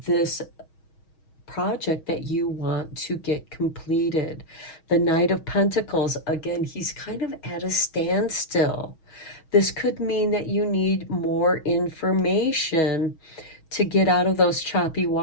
this project that you want to get completed. The Knight of Pentacles, again, he's kind of at a standstill. This could mean that you need more information to get out of those choppy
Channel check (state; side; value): late; right; 6.3 ms